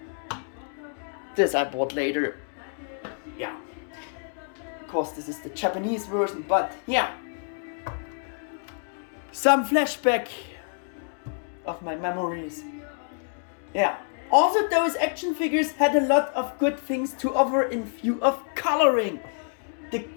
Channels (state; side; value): silent; right; 60 dB below the other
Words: This I bought later. Yeah. Of course this is the Japanese version, but yeah. Some flashback of my memories. Yeah. Also those action figures had a lot of good things to offer in view of coloring. The